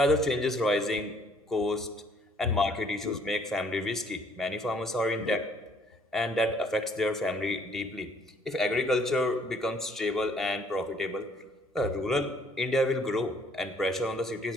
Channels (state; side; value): normal; both; correlation 0.62